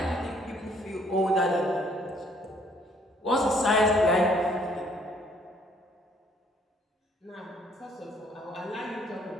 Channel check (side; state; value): both; normal; correlation 0.63